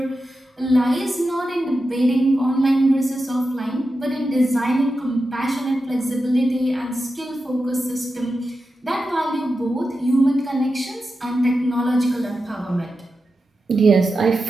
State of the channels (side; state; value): both; normal; correlation 0.90